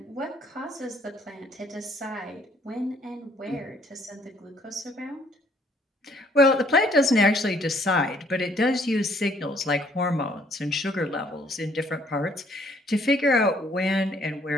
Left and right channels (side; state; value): both; normal; correlation 0.63